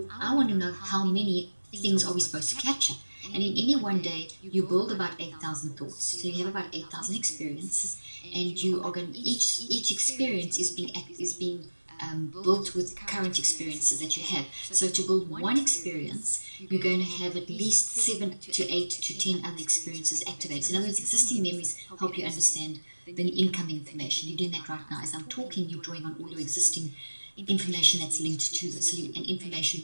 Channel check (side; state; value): both; inverted; correlation -1.00